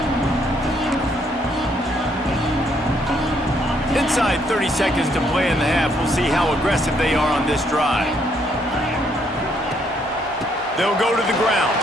Inside 30 seconds to play in the half. We'll see how aggressive they are on this drive. They'll go to the ground.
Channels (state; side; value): normal; both; correlation 0.70